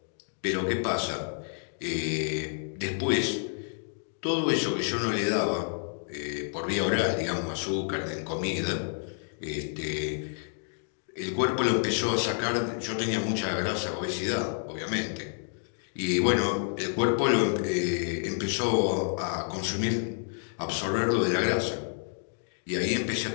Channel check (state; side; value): silent; right; 58 dB below the other